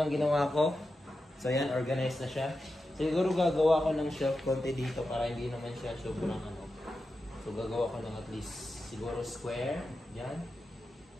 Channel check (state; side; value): normal; both; correlation 0.90